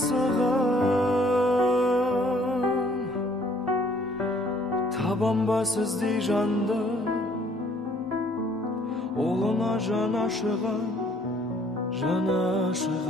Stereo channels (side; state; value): both; normal; correlation 0.60